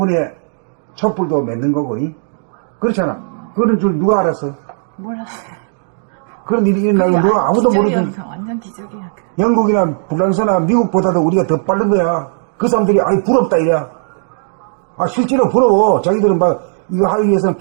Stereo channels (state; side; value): silent; left; digital silence